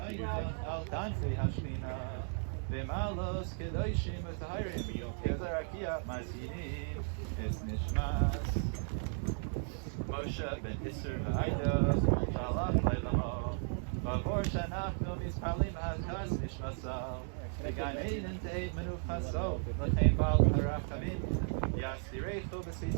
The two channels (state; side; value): silent; left; 54 dB below the other